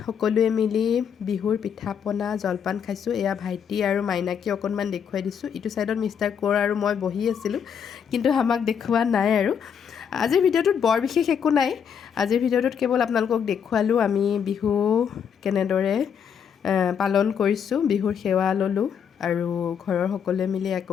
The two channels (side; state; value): right; quieter; 7.6 dB